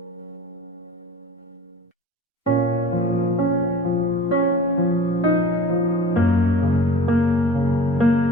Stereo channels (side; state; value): both; normal; correlation 0.39